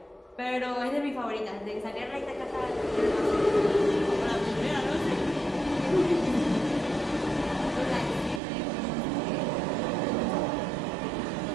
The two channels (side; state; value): left; drops out; at 8.4 s